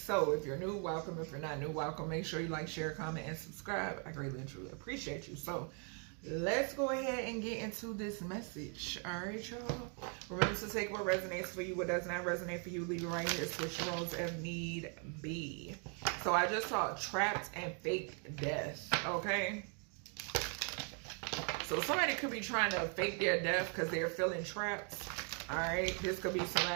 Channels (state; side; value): quieter; left; 39.7 dB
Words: if you're new, welcome. If you're not new, welcome. Make sure you like, share, comment, and subscribe. I greatly and truly appreciate you. So let's go ahead and get into this message. All right, y'all. Remember to take what resonates for you. What does not resonate for you, leave it right here. Switch roles if need be. So I just saw trapped and fake death. Okay. So somebody could be trying to fake their death because they're feeling trapped. All right, this could be